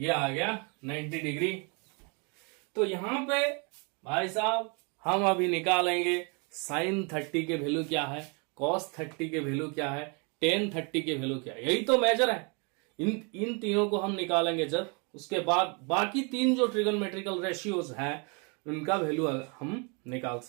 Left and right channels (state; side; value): quieter; left; 33.5 dB